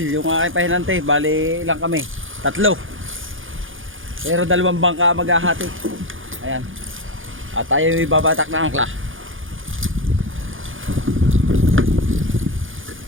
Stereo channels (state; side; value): late; left; 0.58 ms